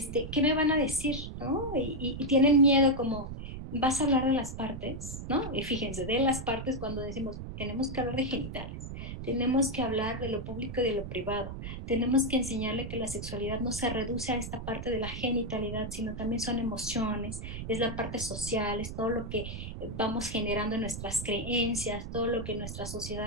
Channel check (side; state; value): right; noise; rumble, 8 dB below the sound